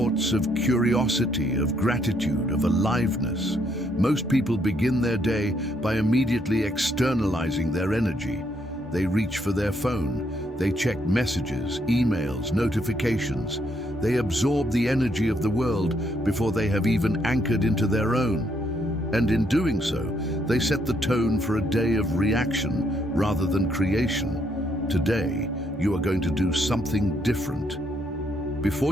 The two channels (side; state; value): both; normal; correlation 0.73